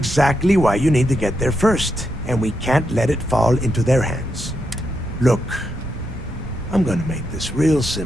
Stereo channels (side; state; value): both; normal; correlation 0.83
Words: why you need to get there first, and we can't let it fall into their hands. Look, I'm gonna make this real